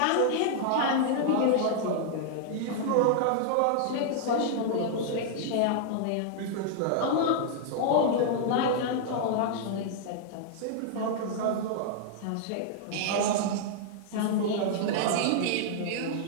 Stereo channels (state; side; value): different; both; correlation -0.01